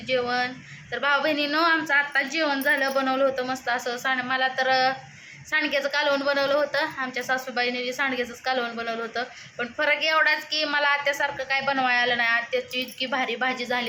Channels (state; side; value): identical; both; correlation 1.00